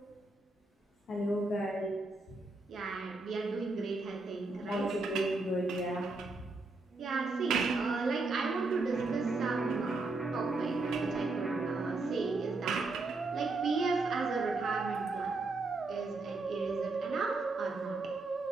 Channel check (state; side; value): quieter; left; 3.4 dB